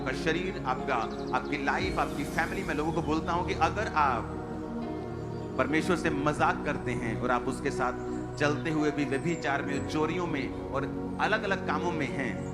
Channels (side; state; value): both; identical; correlation 1.00